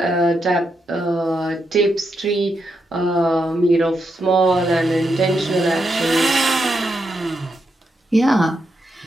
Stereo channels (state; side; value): normal; both; correlation 0.83